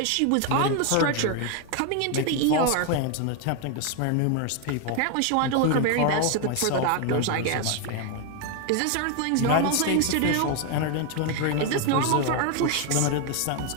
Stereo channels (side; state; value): both; different; correlation 0.01